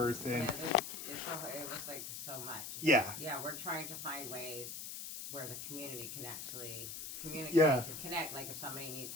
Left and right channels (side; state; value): left; noise; hiss, 7 dB below the sound